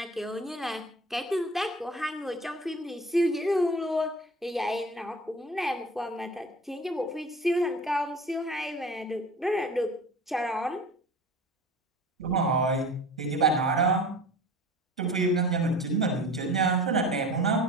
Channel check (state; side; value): normal; both; correlation 0.39